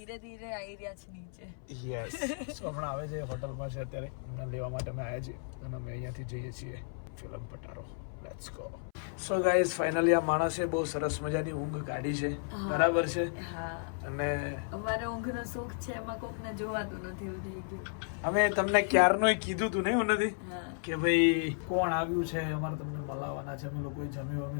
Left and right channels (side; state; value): right; silent; 55 dB below the other